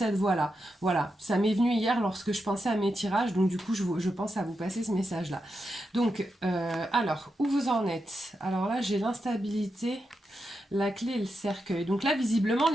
voie-là. Voilà, ça m'est venu hier lorsque je pensais à mes tirages, donc du coup je pense à vous passer ce message-là. Donc, alors, où vous en êtes? Alors là, j'ai l'instabilité, la clé et le cercueil. Donc là, visiblement,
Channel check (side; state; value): both; normal; correlation 0.87